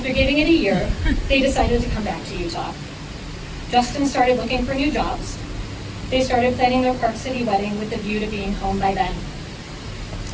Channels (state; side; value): identical; both; correlation 1.00